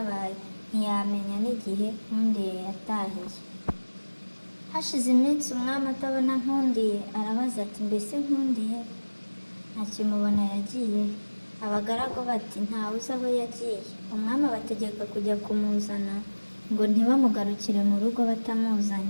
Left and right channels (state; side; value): inverted; both; correlation -1.00